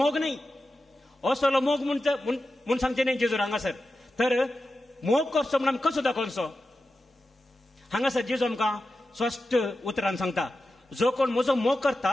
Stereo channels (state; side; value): normal; both; correlation 0.92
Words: न्हय. असलो मोग म्हूण सांगचे न्हय जेजूर हांगासर. तर मोग करचो म्हूण आमी कसो दाखोवचो? हांगासर जेजू आमकां स्पश्ट उतरान सांगता, जो कोण म्हजो मोग